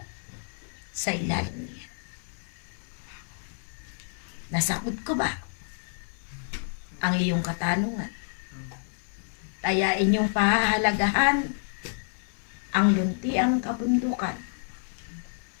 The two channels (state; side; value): silent; right; digital silence